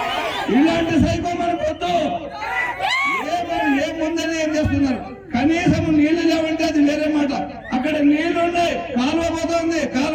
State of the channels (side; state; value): both; identical; correlation 1.00